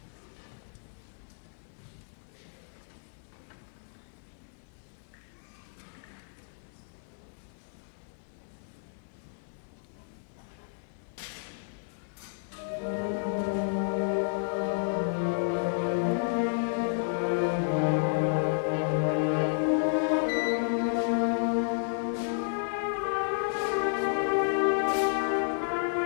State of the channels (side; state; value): right; silent; digital silence